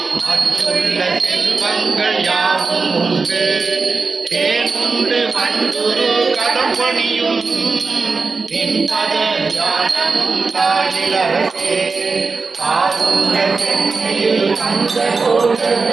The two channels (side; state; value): left; quieter; 4.4 dB